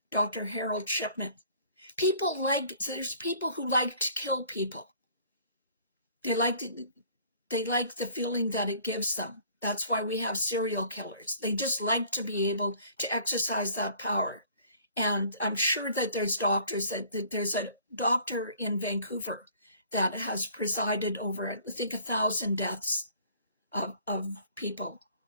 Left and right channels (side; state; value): both; inverted; correlation -0.54